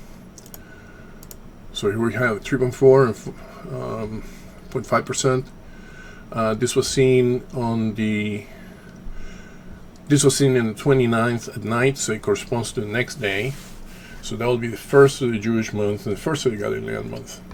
So here we have 3.4 and 0.5%. This was seen in the 29th at night, so it corresponds to the next day. So that will be the first of the Jewish month and the first of the Galilean month.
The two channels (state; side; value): identical; both; correlation 1.00